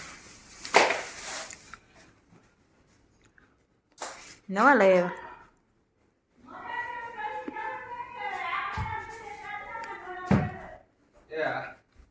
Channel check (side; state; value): both; identical; correlation 1.00